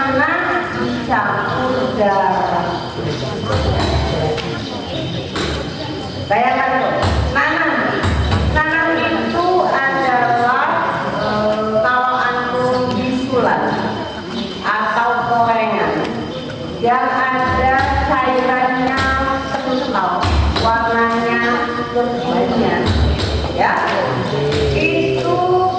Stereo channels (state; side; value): identical; both; correlation 1.00